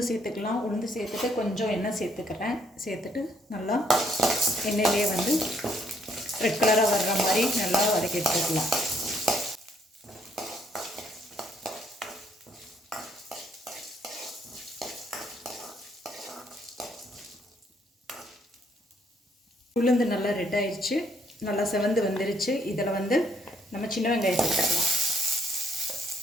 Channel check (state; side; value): normal; both; correlation 0.69